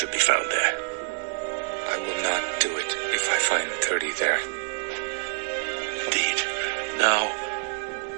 be found there. I will not do it if I find 30 there. Indeed. Now,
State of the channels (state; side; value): silent; left; digital silence